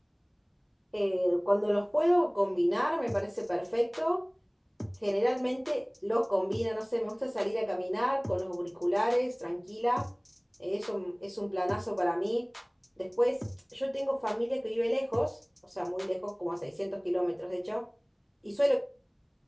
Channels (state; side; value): identical; both; correlation 1.00